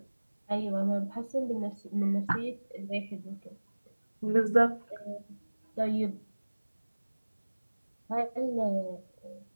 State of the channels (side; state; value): both; inverted; correlation -1.00